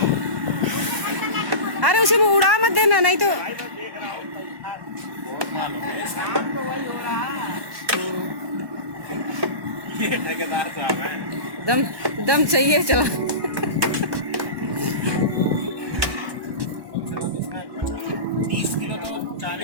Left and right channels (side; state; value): left; late; 1.1 ms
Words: अरे उसी में उड़ा मत देना, नहीं तो ये ठेकेदार साहब हैं। दम दम चाहिए चला। 30 किलो तो